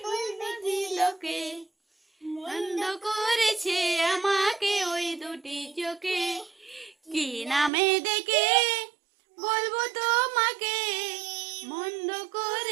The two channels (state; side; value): drops out; left; at 7.7 s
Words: বলতে দিলকে বন্ধ করেছে আমাকে ওই দুটি চোখে কি নামে ডেকে বলবো তোমাকে বন্ধ